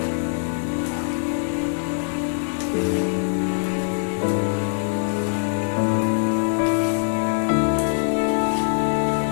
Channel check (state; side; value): silent; right; digital silence